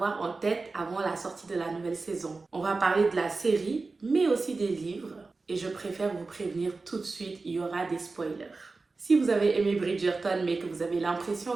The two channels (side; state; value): left; quieter; 3.8 dB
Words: en tête avant la sortie de la nouvelle saison. On va parler de la série mais aussi des livres. Et je préfère vous prévenir tout de suite, il y aura des spoilers. Si vous avez aimé Bridgerton mais que vous avez l'impression